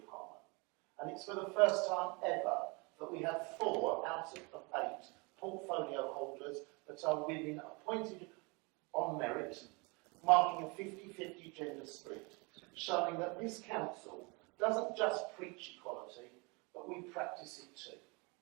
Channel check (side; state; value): left; quieter; 29.1 dB